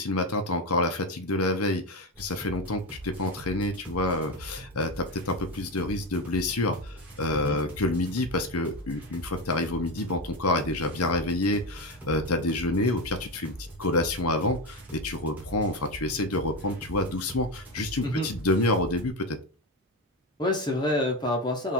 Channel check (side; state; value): both; normal; correlation 0.16